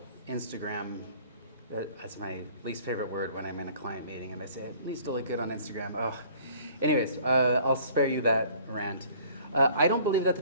Instagram, that's my least favorite word when I'm in a client meeting and I say, it needs to look good on Instagram. Oh. Anyways, I'll spare you that rant. I don't believe that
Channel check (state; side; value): inverted; both; correlation -0.53